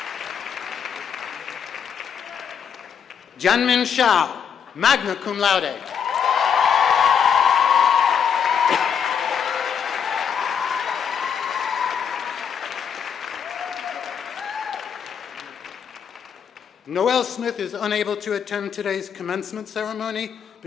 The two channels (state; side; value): quieter; right; 7.5 dB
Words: Janmin Shah, magna cum laude. Noelle Smith is unable to attend today's commencement ceremony